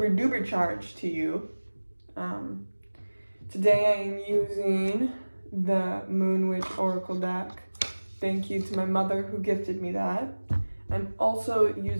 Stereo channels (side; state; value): both; inverted; correlation -1.00